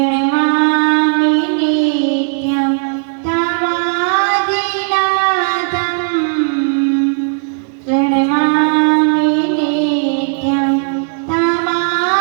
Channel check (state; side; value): silent; left; 59 dB below the other